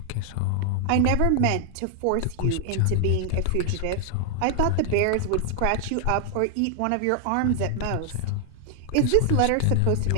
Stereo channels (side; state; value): both; different; correlation 0.00